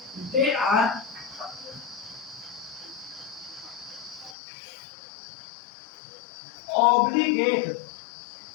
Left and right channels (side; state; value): right; drops out; at 4.4 s